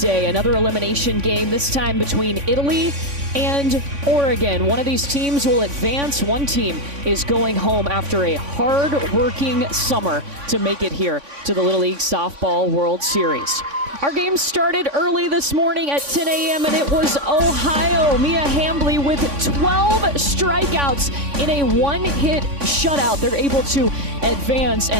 Another elimination game, this time between Italy and Oregon. One of these teams will advance. One team is going home after a hard-working summer to make it here to the Little League Softball World Series. Our game started early this morning at 10 a.m. and it was Ohio. Mia Hambly with 12 strikeouts in a one-hit shutout. They're able to advance.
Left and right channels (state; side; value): late; left; 3.5 ms